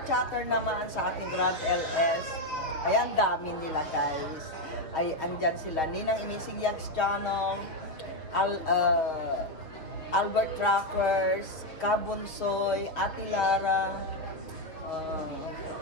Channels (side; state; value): right; late; 6.5 ms